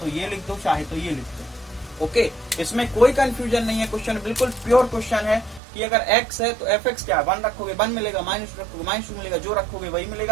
ये लिख दो, चाहे तो ये लिख दो। ओके, इसमें कोई कंफ्यूजन नहीं है, क्वेश्चन बिल्कुल प्योर क्वेश्चन है कि अगर x है तो fx क्या है? 1 रखोगे 1 मिलेगा, माइनस रखोगे -2 मिलेगा, जो रखोगे वही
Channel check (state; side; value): drops out; left; at 5.6 s